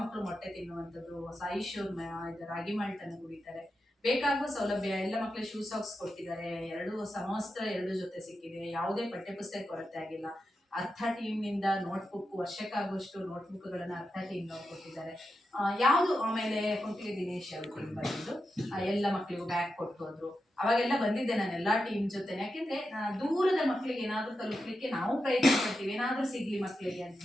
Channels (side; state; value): both; normal; correlation 0.89